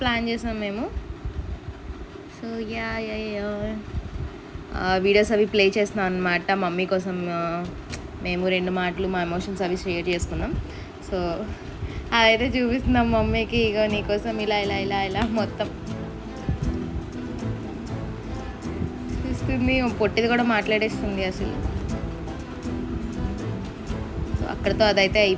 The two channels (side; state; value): both; identical; correlation 1.00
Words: ప్లాన్ చేసాం మేము. సో వీడియోస్ అవి ప్లే చేస్తున్నాం అనమాట మమ్మీ కోసం. మేము 2 మాటలు మా ఎమోషన్స్ అవి షేర్ చేసుకున్నాం. సో అదైతే చూపిస్తున్నాం మమ్మీకి, ఇగో నీకోసం ఇలా ఇలా ఇలా ఇలా మొత్తం చూస్తుంది. పొట్టిది కూడా మాట్లాడేస్తుంది అసలు. సో అక్కడితో అదైతే